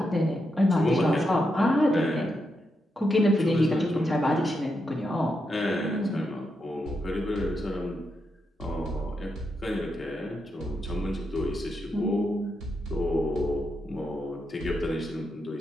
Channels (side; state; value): both; normal; correlation 0.84